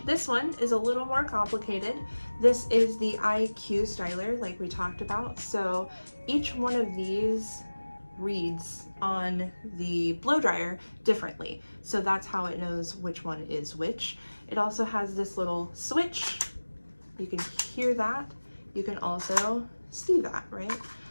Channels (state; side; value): inverted; both; correlation -1.00